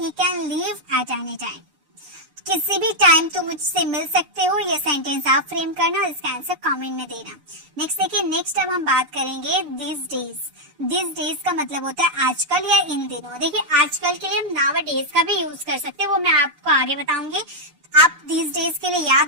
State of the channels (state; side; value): late; left; 6.8 ms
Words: can leave at any time. किसी भी टाइम तुम मुझसे मिल सकते हो, ये सेंटेंस आप फ्रेम करना और इसका आंसर कमेंट में देना। नेक्स्ट देखिए, नेक्स्ट अब हम बात करेंगे दिस डेज। दिस डेज का मतलब होता है आजकल या इन दिनों। देखिए आजकल के लिए हम नाउ डेज का भी यूज कर सकते हैं, वो मैं आपको आगे बताऊंगी। आप दिस डेज के लिए